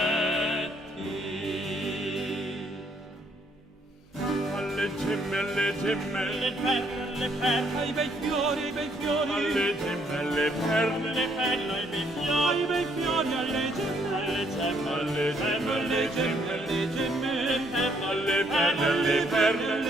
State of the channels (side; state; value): both; normal; correlation 0.69